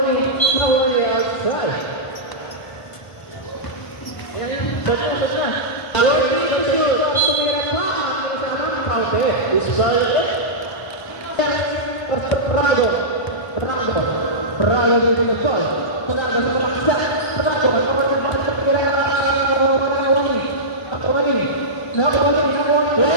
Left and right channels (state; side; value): late; right; 1.0 ms